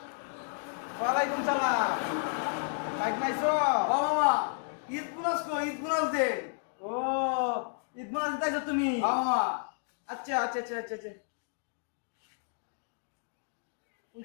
ওয়ালাইকুম সালাম। বাইক নাইছো? ও মামা, ঈদ গুনাস কো, ঈদ গুনাস দে। ও ঈদ মোনাজ দিতেছো তুমি? হ্যাঁ মামা। আচ্ছা আচ্ছা আচ্ছা আচ্ছা আচ্ছা।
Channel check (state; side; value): silent; right; digital silence